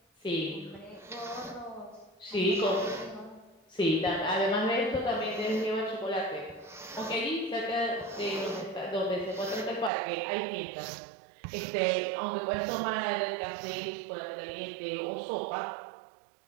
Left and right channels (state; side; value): drops out; left; at 9.9 s